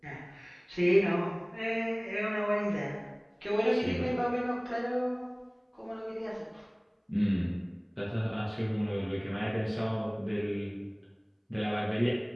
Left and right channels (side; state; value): both; identical; correlation 1.00